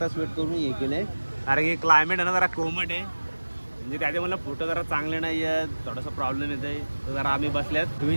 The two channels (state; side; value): inverted; both; correlation -1.00